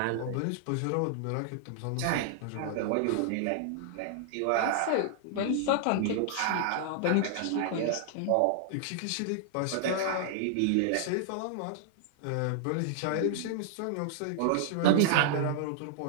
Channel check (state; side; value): different; both; correlation -0.01